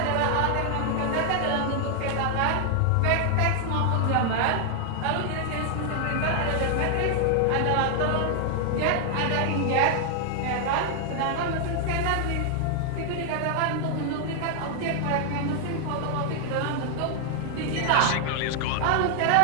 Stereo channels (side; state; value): both; different; correlation 0.00